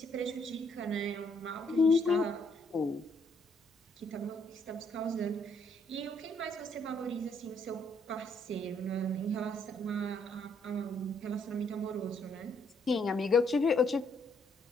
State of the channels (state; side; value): normal; both; correlation 0.70